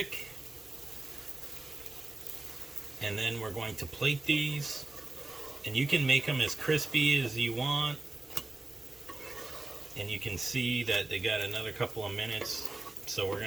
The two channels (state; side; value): quieter; left; 3.1 dB